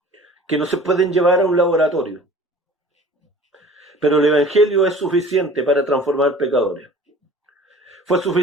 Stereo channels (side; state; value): both; normal; correlation 0.46